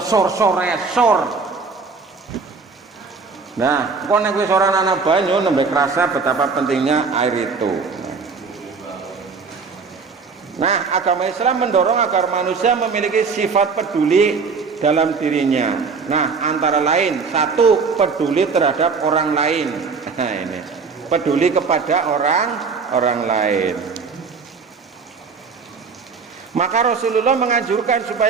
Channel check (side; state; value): left; quieter; 5.0 dB